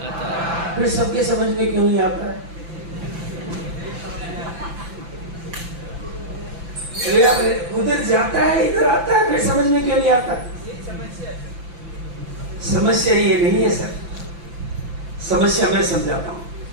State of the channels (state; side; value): late; left; 5.9 ms